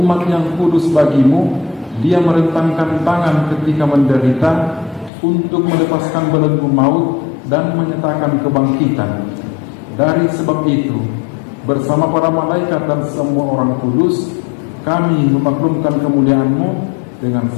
yang kudus bagimu. Dia merentangkan tangan ketika menderita untuk melepaskan belenggu maut dan menyatakan kebangkitan. Dari sebab itu, bersama para malaikat dan semua orang kudus, kami memaklumkan kemuliaan-Mu dengan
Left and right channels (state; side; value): drops out; right; at 5.1 s